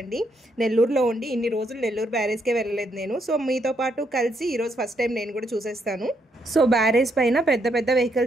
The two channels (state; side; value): normal; both; correlation 0.76